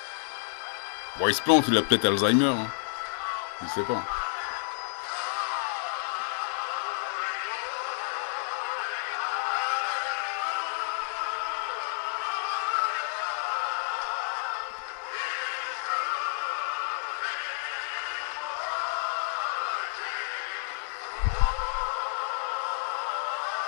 Bon, il se plante, il a peut-être Alzheimer. Hein. Je sais pas.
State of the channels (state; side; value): silent; right; digital silence